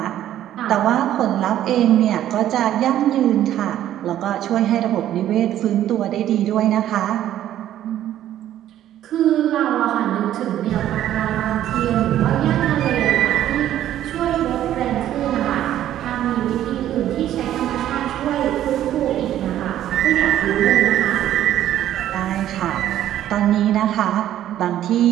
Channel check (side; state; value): left; quieter; 12.0 dB